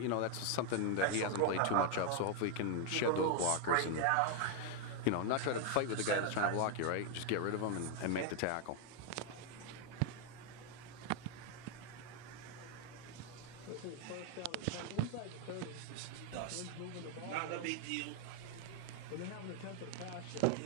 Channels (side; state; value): both; different; correlation 0.00